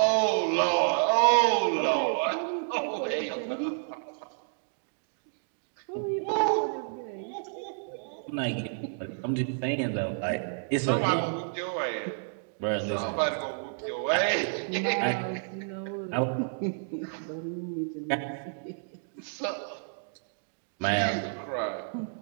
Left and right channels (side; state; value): left; silent; digital silence